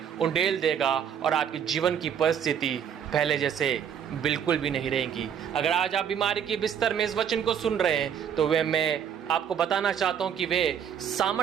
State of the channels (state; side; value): quieter; left; 8.4 dB